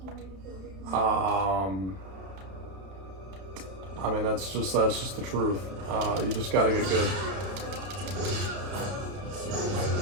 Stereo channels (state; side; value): late; left; 31 ms